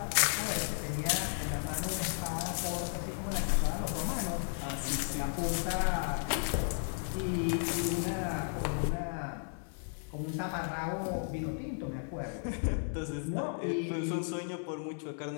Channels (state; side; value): silent; right; digital silence